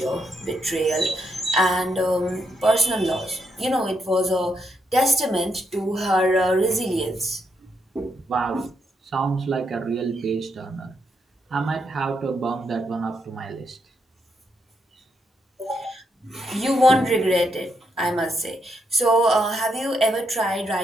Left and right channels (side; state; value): both; normal; correlation 0.79